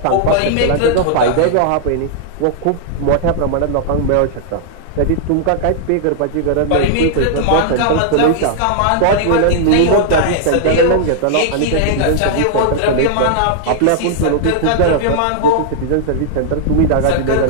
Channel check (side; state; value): both; different; correlation -0.01